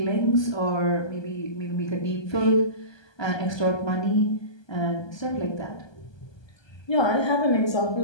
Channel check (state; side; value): late; right; 1.2 ms